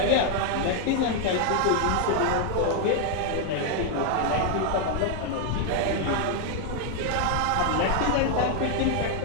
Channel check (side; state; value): both; different; correlation 0.00